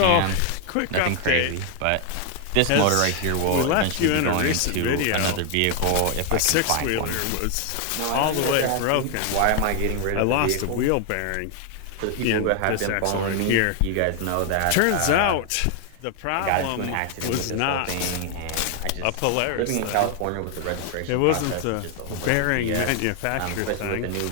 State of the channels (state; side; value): different; both; correlation 0.00